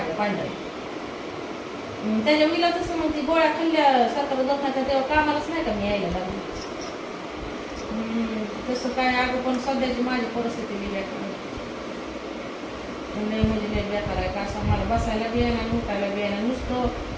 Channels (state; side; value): identical; both; correlation 1.00